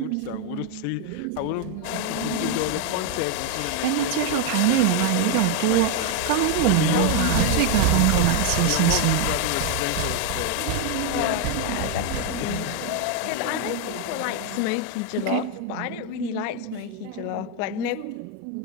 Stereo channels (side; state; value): both; different; correlation 0.01